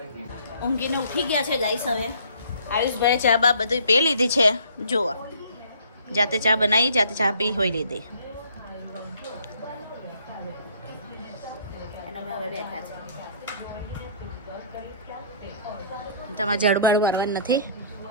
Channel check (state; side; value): inverted; both; correlation -0.56